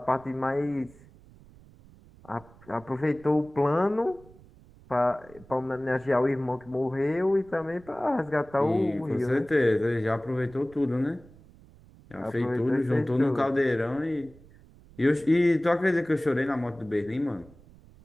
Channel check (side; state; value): right; noise; rumble, 24 dB below the sound